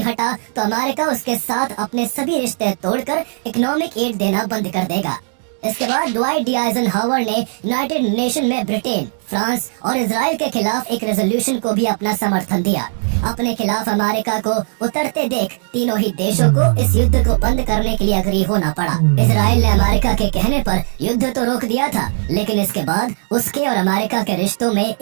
हटा तो अमेरिका उसके साथ अपने सभी रिश्ते तोड़कर इकोनॉमिक एड देना बंद कर देगा। इसके बाद ड्वाइट डी आइजनहावर ने यूनाइटेड नेशन में ब्रिटेन, फ्रांस और इजराइल के खिलाफ एक रेजोल्यूशन को भी अपना समर्थन दिया। अपने खिलाफ अमेरिका को उतरते देख तीनों ही देशों को इस युद्ध को बंद करने के लिए अग्री होना पड़ा। इजराइल ने अमेरिका के कहने पर युद्ध तो रोक दिया था, लेकिन इसके बाद उसके और अमेरिका के रिश्तों में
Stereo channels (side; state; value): left; silent; digital silence